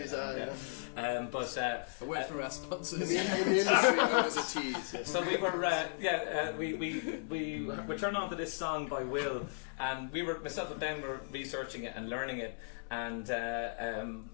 tease, but A word for our sponsors. in the industry, known as a tease. Yeah. so we were turned on to this song by Will, and myself and Ben were researching it and learning it, and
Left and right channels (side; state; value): right; silent; 54 dB below the other